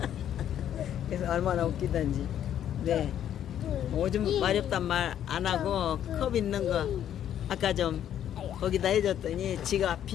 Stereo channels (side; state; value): right; quieter; 10.4 dB